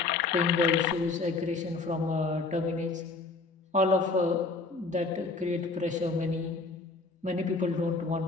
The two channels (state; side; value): quieter; right; 3.8 dB